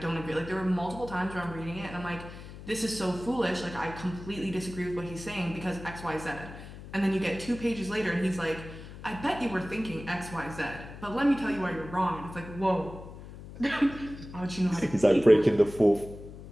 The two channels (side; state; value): left; noise; hum, 14 dB below the sound